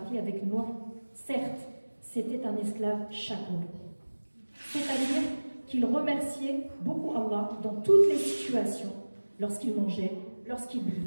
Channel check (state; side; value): inverted; both; correlation -1.00